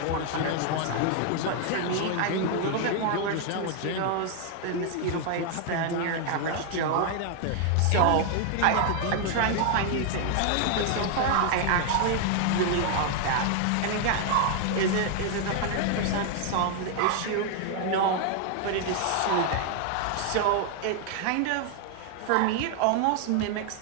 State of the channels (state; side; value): different; both; correlation 0.00